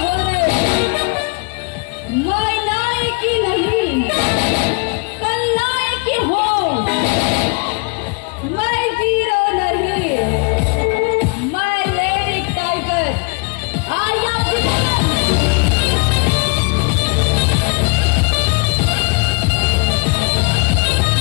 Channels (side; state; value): right; quieter; 33.5 dB